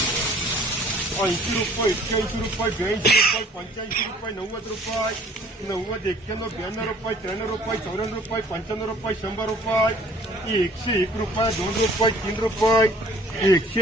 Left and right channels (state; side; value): normal; both; correlation 0.54